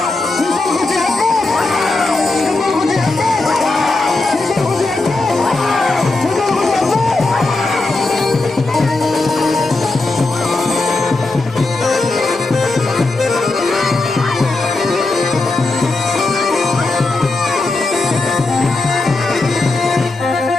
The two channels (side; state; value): right; quieter; 3.2 dB